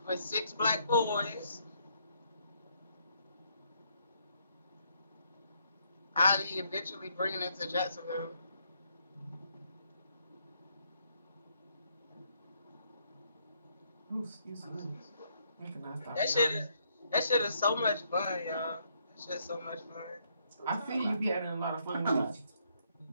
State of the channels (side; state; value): both; inverted; correlation -0.72